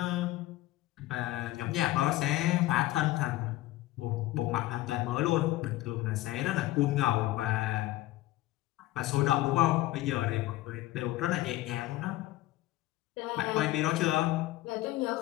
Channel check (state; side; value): quieter; right; 16.6 dB